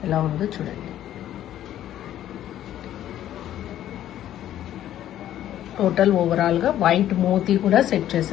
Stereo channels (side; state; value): right; quieter; 12.0 dB